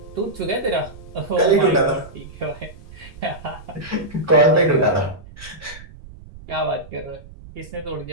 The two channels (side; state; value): right; noise; rumble, 18 dB below the sound